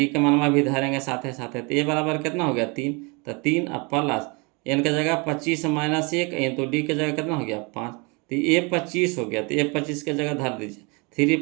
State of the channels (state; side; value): quieter; left; 30.1 dB